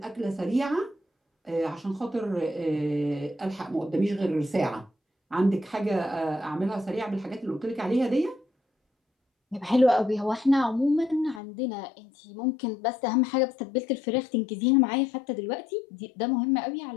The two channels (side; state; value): right; drops out; at 11.4 s